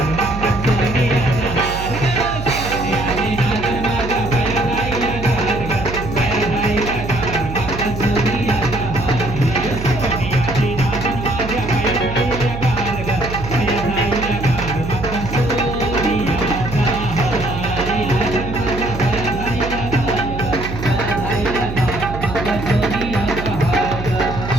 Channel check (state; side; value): noise; right; hum, 7 dB below the sound